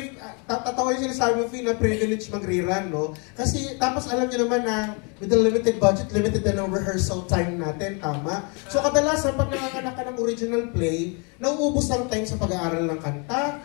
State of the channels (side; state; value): right; quieter; 34.2 dB